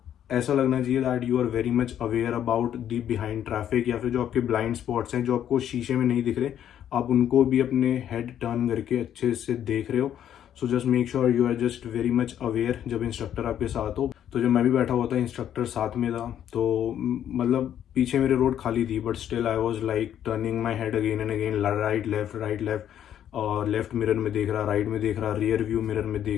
ऐसा लगना चाहिए that you are very much aware about the behind traffic, या फिर जो आपके ब्लाइंड स्पॉट्स हैं जो आपको शीशे में नहीं दिख रहे, आप उनको भी अपने हेड टर्न करके अच्छे से देख रहे हो। So just make sure you are just very much aware जब इंस्ट्रक्टर आपके साथ हो। तो जब मैं भी बैठा हुआ था, इंस्ट्रक्टर साथ में था, तो मतलब पीछे मेरे रोड खाली थी, but still I was like turning my head again and again, right left, और लेफ्ट मिरर में देख रहा, राइट में देख रहा, रियर व्यू मिरर में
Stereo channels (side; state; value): right; quieter; 10.2 dB